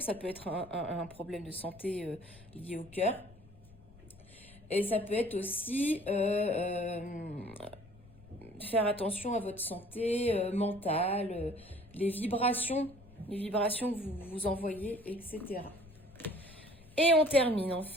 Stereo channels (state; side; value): noise; left; rumble, 22 dB below the sound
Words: Ça peut être un problème de santé lié au cœur. Et ça peut être aussi faire attention à votre santé mentale, les vibrations que vous envoyez, etc. Et on termine